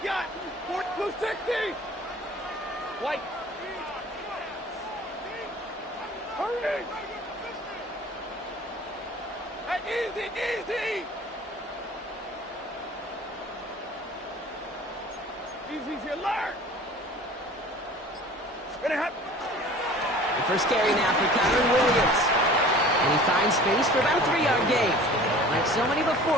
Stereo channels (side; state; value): both; normal; correlation 0.44